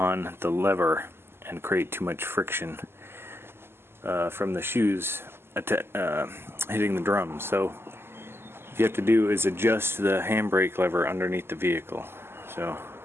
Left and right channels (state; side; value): late; left; 0.12 ms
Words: the lever and create too much friction from the shoes hitting the drum. So what you have to do is adjust the handbrake lever underneath the vehicle. So